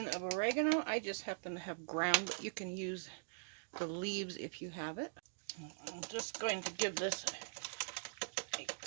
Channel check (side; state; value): left; silent; digital silence